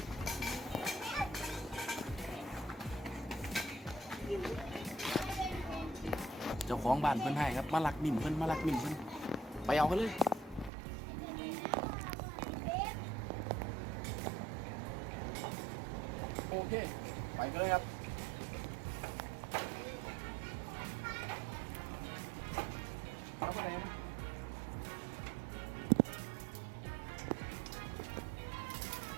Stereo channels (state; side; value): drops out; left; at 10.7 s